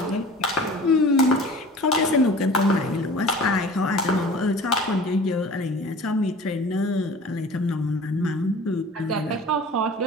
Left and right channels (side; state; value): both; normal; correlation 0.42